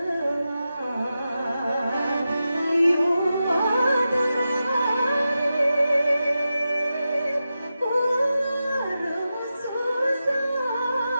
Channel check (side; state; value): both; inverted; correlation -0.91